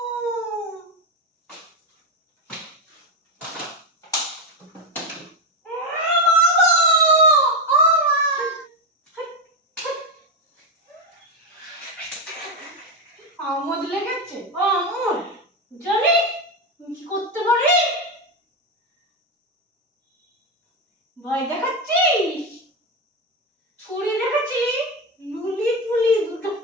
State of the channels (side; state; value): both; normal; correlation 0.11